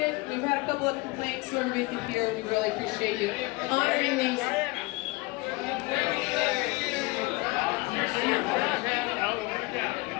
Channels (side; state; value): right; quieter; 23.7 dB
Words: it. We've had a couple of complaints so everybody can hear. We really appreciate you honoring these.